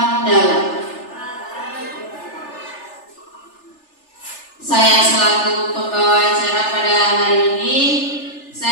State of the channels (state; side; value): late; right; 3.4 ms